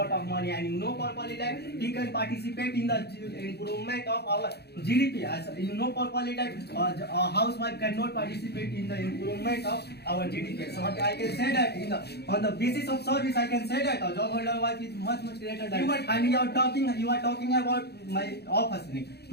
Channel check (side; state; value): right; late; 0.48 ms